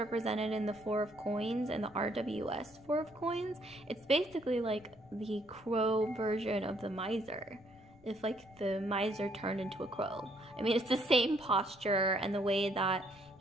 in the 4 of coins and the RWS 4 of coins, it's basically like the crow version of the miser. If like the miser turned into a crow. I mean, it's the same posture and the way that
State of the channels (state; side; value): noise; left; rumble, 25 dB below the sound